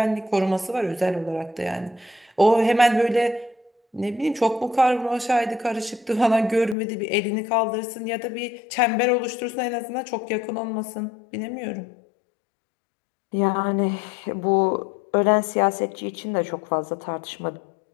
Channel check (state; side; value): drops out; right; at 6.8 s